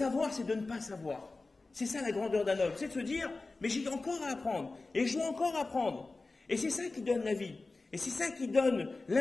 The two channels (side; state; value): right; quieter; 3.5 dB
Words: c'est de ne pas savoir. C'est ça la grandeur d'un homme. C'est de se dire, mais j'ai encore à apprendre. Et je dois encore apprendre. Et c'est ça qui donne la vie. Et c'est ça qui donne